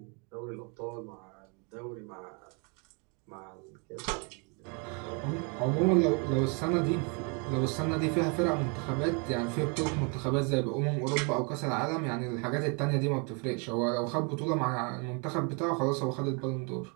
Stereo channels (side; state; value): left; quieter; 34.6 dB